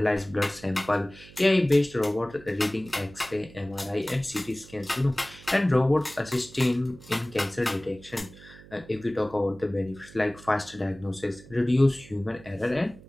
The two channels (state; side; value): noise; right; hum, 20 dB below the sound